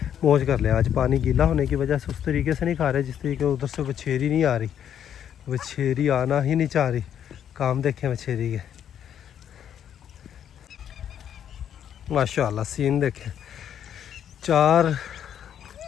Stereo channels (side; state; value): right; quieter; 9.4 dB